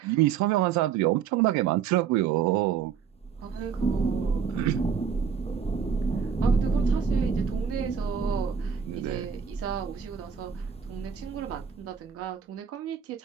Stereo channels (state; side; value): quieter; left; 7.2 dB